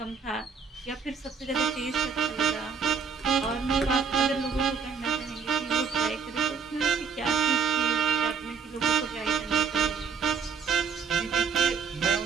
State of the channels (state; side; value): quieter; left; 5.9 dB